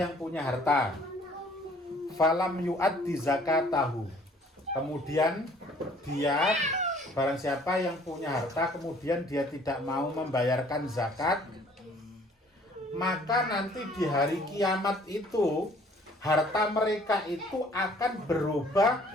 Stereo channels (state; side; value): normal; both; correlation 0.56